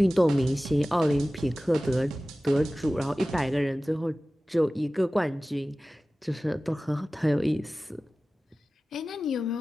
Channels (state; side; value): normal; both; correlation 0.97